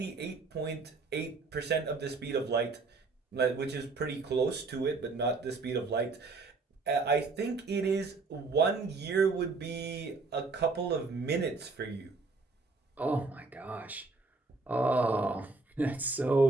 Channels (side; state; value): left; quieter; 3.9 dB